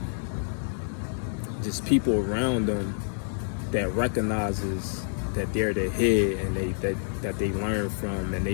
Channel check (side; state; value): right; silent; digital silence